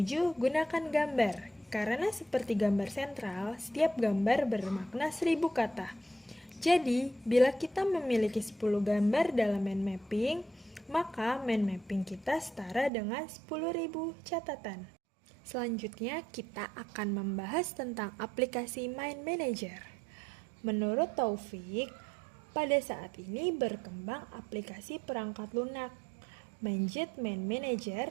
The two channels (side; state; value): left; drops out; at 12.9 s